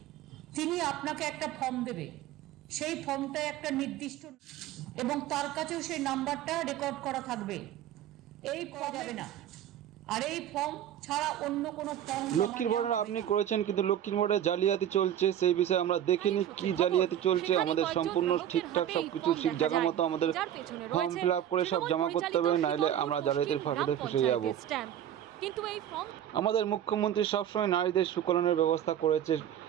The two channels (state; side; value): quieter; left; 10.8 dB